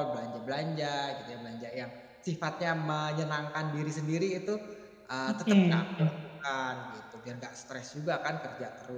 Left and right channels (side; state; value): both; identical; correlation 1.00